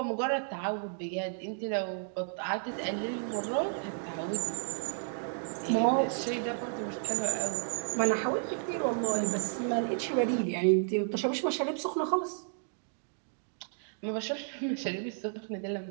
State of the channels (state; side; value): silent; left; digital silence